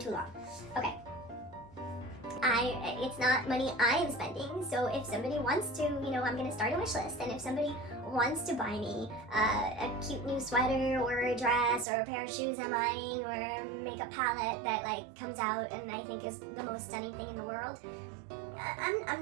long. Okay. It's not money I am spending, so if somebody wants to, I'm gonna start a wish list, and if somebody wants to buy me a cute new sweater or a dress or a pair of shoes I'm eyeing or a makeup palette that comes out and I think is the most stunning thing in the world, I'm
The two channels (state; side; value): drops out; left; at 11.9 s